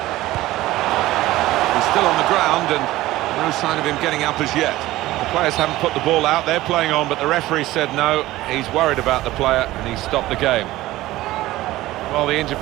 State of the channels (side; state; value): left; quieter; 16.8 dB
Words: He's still on the ground and no sign of him getting up as yet. The players haven't put the ball out, they're playing on, but the referee said no, he's worried about the player and he stopped the game. Well, the injured